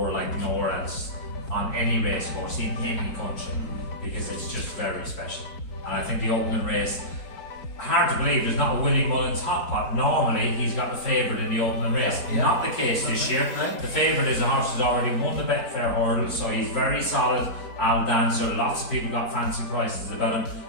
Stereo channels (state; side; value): late; right; 4.6 ms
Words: like nowhere else on any race course in any country, because it's just very special. And I think the opening race, hard to believe there's not a Willie Mullins hot pot. Normally he's got the favourite in the opening race. Not the case this year. The favourite is a horse who's already won the Betfair hurdle, so he's very solid. Al Dancer, lots of people got fancy prices about him.